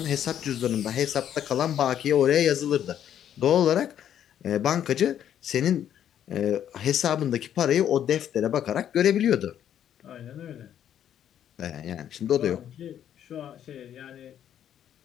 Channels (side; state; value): right; quieter; 10.1 dB